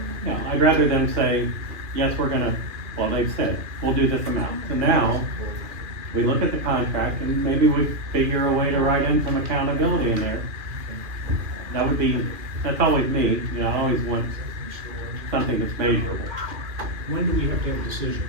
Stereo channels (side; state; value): left; late; 2.4 ms